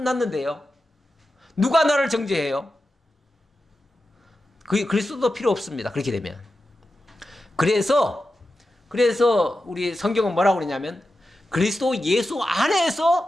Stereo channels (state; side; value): normal; both; correlation 0.91